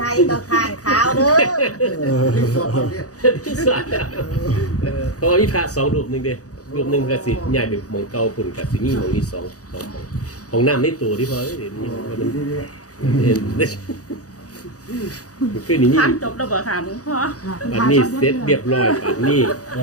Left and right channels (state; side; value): late; right; 0.67 ms